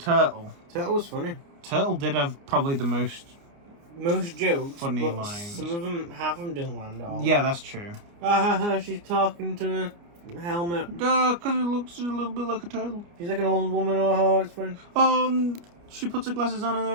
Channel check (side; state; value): left; late; 29 ms